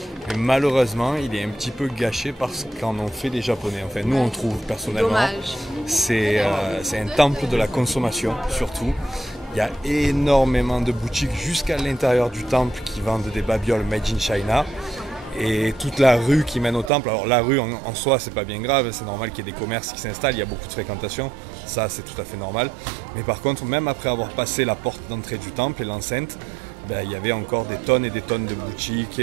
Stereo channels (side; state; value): left; drops out; at 16.9 s